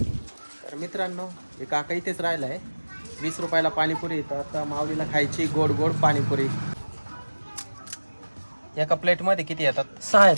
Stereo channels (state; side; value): inverted; both; correlation -1.00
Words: तर मित्रांनो, हे काका इथेच राहिलाय. 20 रुपयाला पाणीपुरी. तर आता माऊलीला खायची गोड गोड पाणीपुरी. एका प्लेट मध्ये किती येतात? 6